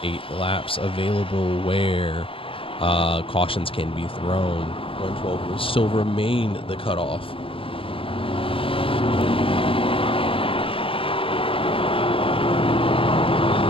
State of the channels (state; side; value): late; right; 0.26 ms